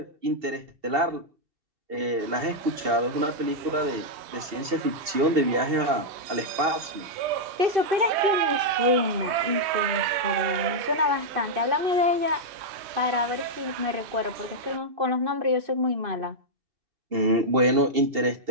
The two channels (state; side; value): late; left; 2.7 ms